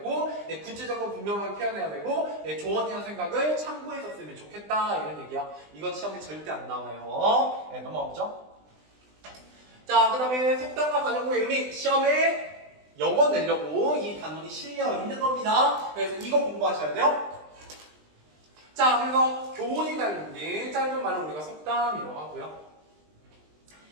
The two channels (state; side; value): late; left; 20 ms